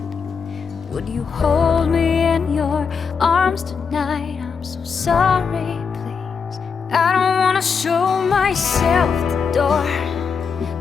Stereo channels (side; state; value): right; quieter; 5.9 dB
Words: Would you hold me in your arms tonight? I'm so sorry, please. I don't wanna show myself the door.